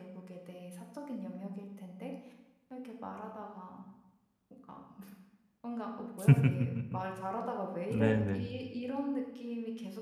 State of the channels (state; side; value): identical; both; correlation 1.00